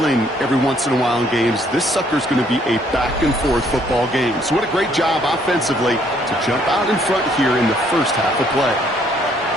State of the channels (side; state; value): both; normal; correlation 0.66